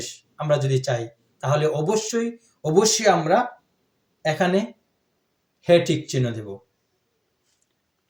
আমরা যদি চাই, তাহলে অবশ্যই অবশ্যই আমরা এখানে হ্যাঁ টিক চিহ্ন দেব।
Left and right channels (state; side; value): identical; both; correlation 1.00